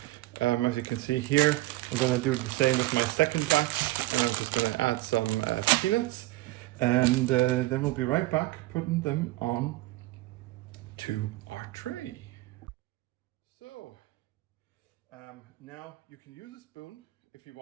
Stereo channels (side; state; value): left; quieter; 18.4 dB